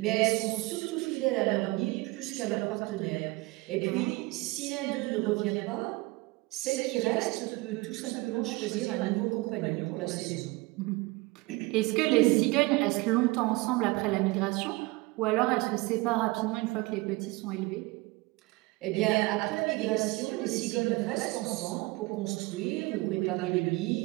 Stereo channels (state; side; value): quieter; left; 23.1 dB